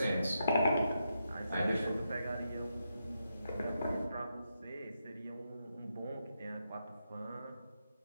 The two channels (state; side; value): inverted; both; correlation -0.84